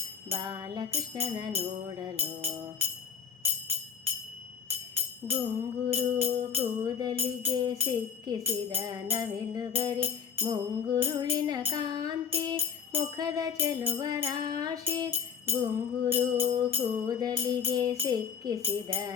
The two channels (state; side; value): quieter; right; 7.4 dB